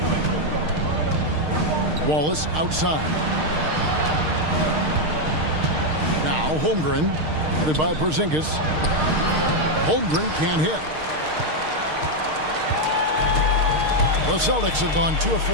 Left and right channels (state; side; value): late; left; 6.5 ms